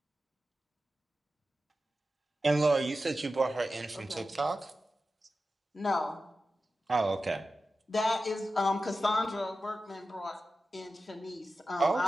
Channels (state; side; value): normal; both; correlation 0.93